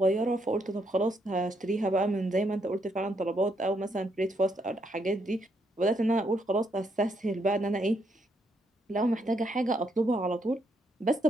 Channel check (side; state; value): both; normal; correlation 0.75